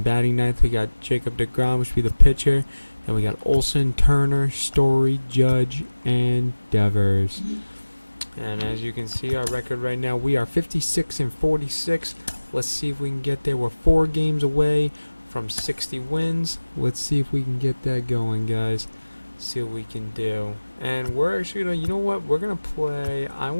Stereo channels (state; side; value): inverted; both; correlation -1.00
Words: batting ninth we got Jacob deGrom, which will be the pitcher. Then we got Olsen, Turner, Story, Judge, and Devers. And as you can see, our record right now, we are 56-46. Let's see if we can get there. We're 4 games away from 60 wins. Let's see if we can get that going, guys. See what we can do. And we're actually gonna, you know what? We're gonna play. I